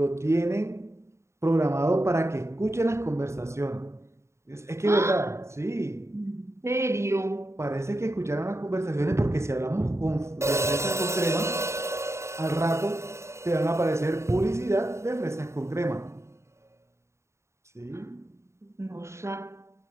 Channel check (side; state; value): left; late; 0.14 ms